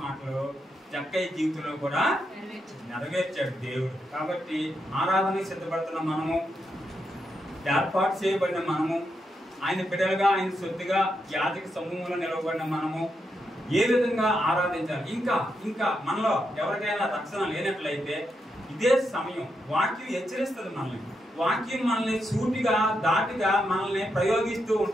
మాటలు జక్కయ్య జీవితంలో కూడా నెరవేర్చాడు దేవుడు. కాబట్టి ఆరాధనకి సిద్ధపడుతున్న మనము, ఏర్పాటు చేయబడిన మనము, ఆయన బిడ్డలుగా ఆయన సొత్తుగా యాజక సమూహంలో నిలవబడిన మనము ఏ విధంగా ఆరాధించాలి. ఇంకా మనలో ఎవరికైనా రక్షణ లేనట్లయితే ఇదే సమయం. వాక్యం హెచ్చరిస్తుంది మనల్ని. వాక్యం మనల్ని సూటిగా దాటిగా మనల్ని ప్రయోగిస్తూ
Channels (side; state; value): both; normal; correlation 0.83